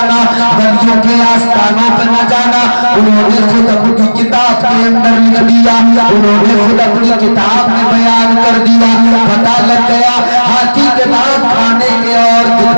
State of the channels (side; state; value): both; inverted; correlation -1.00